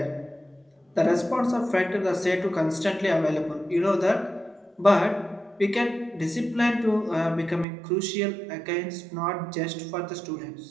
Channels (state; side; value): drops out; left; at 7.7 s